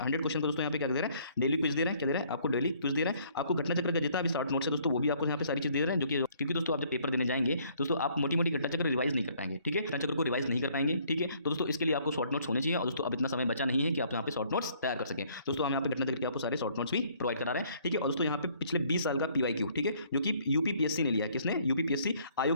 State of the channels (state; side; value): inverted; both; correlation -0.62